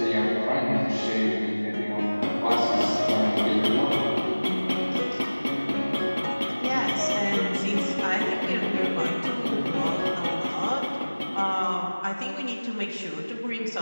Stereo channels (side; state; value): both; inverted; correlation -1.00